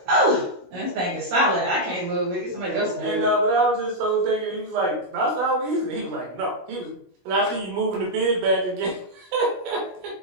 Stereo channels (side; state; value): left; late; 16 ms